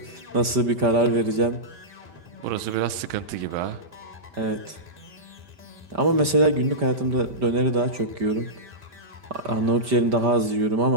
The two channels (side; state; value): left; late; 5.1 ms